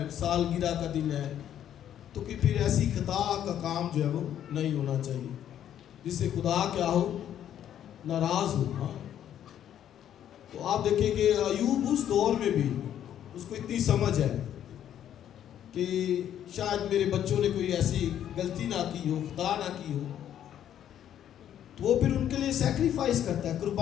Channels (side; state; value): right; quieter; 10.4 dB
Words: سالگرہ کا دن ہے، تو کہ پھر ایسی خطا کا کام جو ہے وہ نہیں ہونا چاہیے جس سے خدا کیا ہو، ناراض ہو۔ ہاں، تو آپ دیکھیں کہ ایوب اس دور میں بھی اس کو اتنی سمجھ ہے کہ شاید میرے بچوں نے کوئی ایسی غلطی نہ کی ہو، خطا نہ کی ہو، تو وہ پھر ان کے لیے سیکریفائس کرتا ہے،